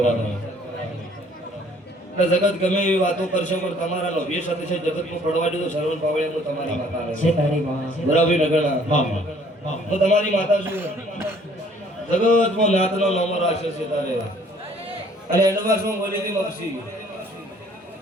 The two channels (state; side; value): normal; both; correlation 0.58